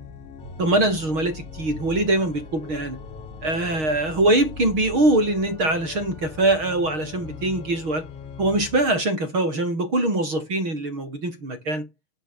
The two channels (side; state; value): left; late; 6.4 ms